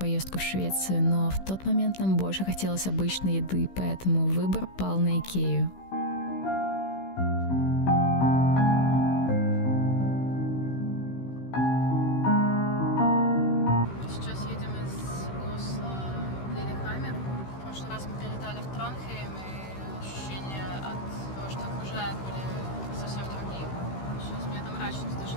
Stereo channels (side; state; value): right; late; 16 ms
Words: в Швецию, но в тот момент нам больше хотелось обычной еды, поэтому выбор пал на Икею.